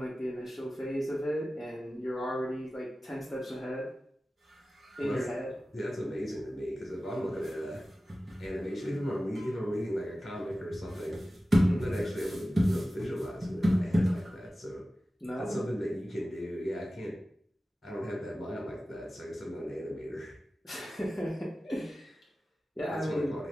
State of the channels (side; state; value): both; normal; correlation 0.95